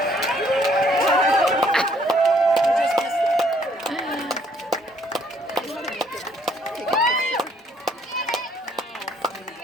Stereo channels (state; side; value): normal; both; correlation 0.64